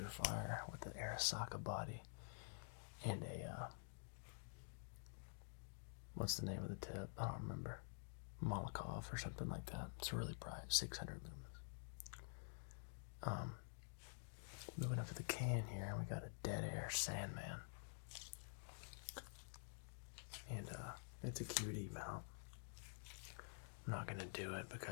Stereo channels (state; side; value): silent; right; digital silence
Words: with an Arasaka body and a what's the name of the tip? I don't remember. Molotov or something like that. It's really bright, 600 lumens. Moving up to the can here, we got a Dead Air Sandman, and it's a QD mount. I'm not gonna do it